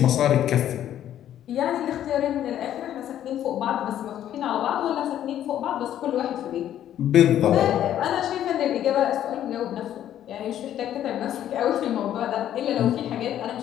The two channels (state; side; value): quieter; right; 11.2 dB